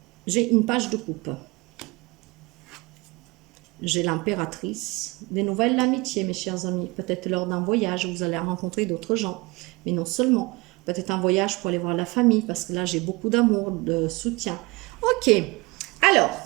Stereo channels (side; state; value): left; quieter; 24.7 dB